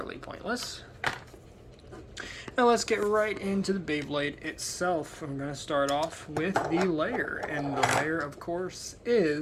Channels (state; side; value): identical; both; correlation 1.00